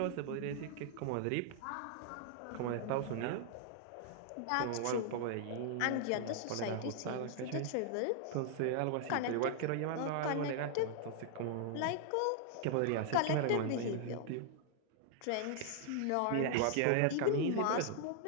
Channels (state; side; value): different; both; correlation 0.00